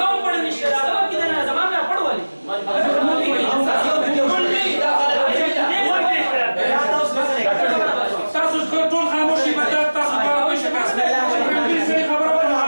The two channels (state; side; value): inverted; both; correlation -1.00